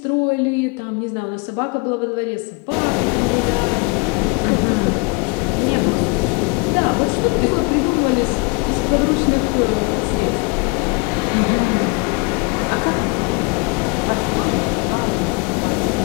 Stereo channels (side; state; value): right; quieter; 30.4 dB